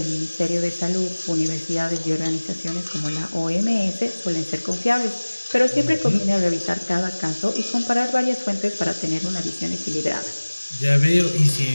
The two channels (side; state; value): both; inverted; correlation -1.00